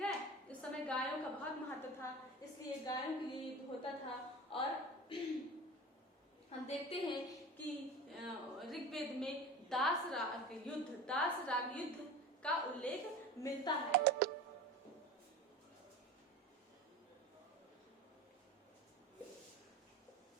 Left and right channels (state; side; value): normal; both; correlation 0.34